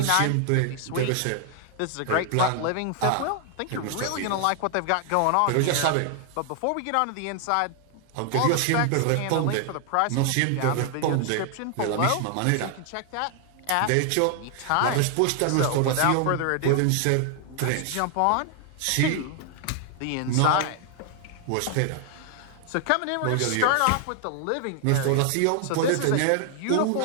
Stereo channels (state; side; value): different; both; correlation 0.00